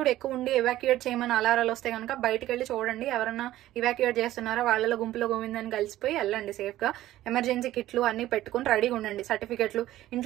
ఎక్కువ ఉండి ఎవాక్యుయేట్ చేయమని అలారాలు వస్తే కనుక బయటకు వెళ్ళి చూడండి. ఎవరన్నా ఇవాక్యుయేట్ చేస్తున్నారా, వాళ్ళలో గుంపులో గోవిందని కలిసిపోయి వెళ్ళండి సేఫ్ గా. ఎమర్జెన్సీ కిట్లు అన్ని పెట్టుకుని రెడీగా ఉండండి. సర్టిఫికెట్లు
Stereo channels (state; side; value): quieter; left; 14.6 dB